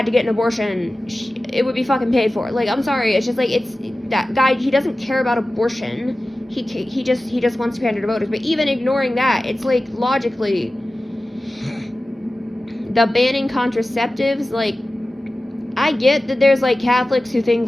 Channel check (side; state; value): both; normal; correlation 0.95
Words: to get an abortion, it would be fucking paid for. Like, I'm sorry, it's just, like, it's, that guy, he doesn't care about abortion. He just wants to pander to voters. But even ignoring that, it's, like, logically, the banning contraceptives, like, I get that there's, like, Catholics who think,